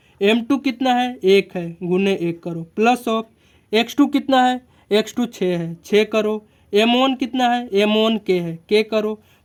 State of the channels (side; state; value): both; identical; correlation 1.00